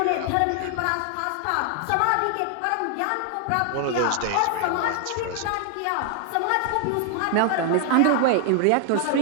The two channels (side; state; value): both; different; correlation 0.00